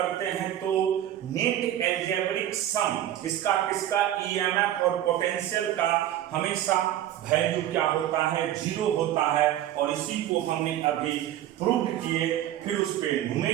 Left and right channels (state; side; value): quieter; left; 12.3 dB